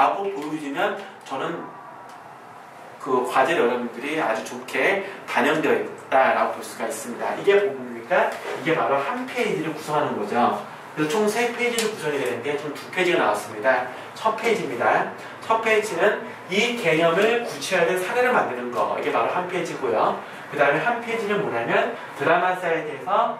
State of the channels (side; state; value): both; identical; correlation 1.00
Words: 보여주면 저는 그 과제를 여러분들이 아주 좋게 반영되어 있다라고 볼 수가 있습니다. 이게 뭡니까? 이게 바로 한 페이지를 구성하는 거죠. 그래서 총 3페이지를 구성이 되는데 총 2페이지가 나왔습니다. 첫 페이지입니다. 첫 페이지는 이 개념을 구체화된 사례를 만드는 거. 이게 바로 한 페이지고요. 그 다음에 한 페이지는 뭐냐면 드라마 사이트에서